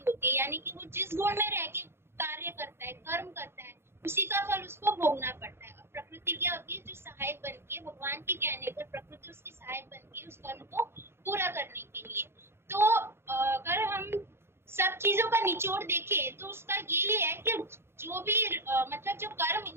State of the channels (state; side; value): late; left; 0.12 ms